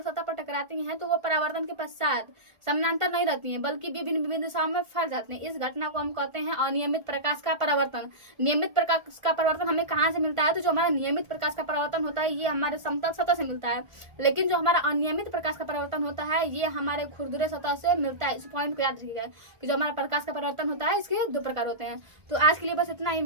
सतह पर टकराती हैं तो वो परावर्तन के पश्चात समानांतर नहीं रहती हैं, बल्कि विभिन्न दिशाओं में फैल जाती हैं। इस घटना को हम कहते हैं अनियमित प्रकाश का परावर्तन। नियमित प्रकाश का परावर्तन हमें कहाँ से मिलता है, तो जो हमारा नियमित प्रकाश का परावर्तन होता है ये हमारे समतल सतह से मिलता है, लेकिन जो हमारा अनियमित प्रकाश का परावर्तन होता है ये हमारे खुरदुरे सतह से मिलता है। इस पॉइंट को याद रखिएगा कि जो हमारा प्रकाश का परावर्तन होता है इसके 2 प्रकार होते हैं। तो आज के लिए बस इतना ही,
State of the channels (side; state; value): left; late; 1.4 ms